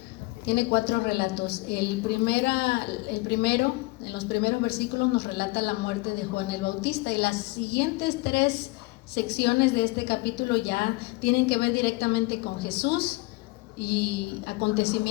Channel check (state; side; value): quieter; right; 23.6 dB